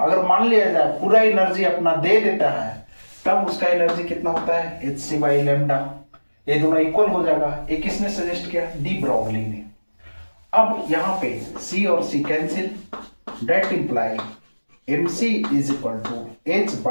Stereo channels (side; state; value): both; inverted; correlation -1.00